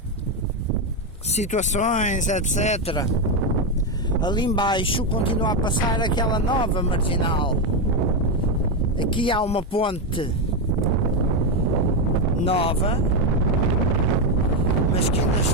situações, etc. Ali embaixo continua a passar aquela nova marginal. Aqui há uma ponte nova, mas que ainda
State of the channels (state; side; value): normal; both; correlation 0.07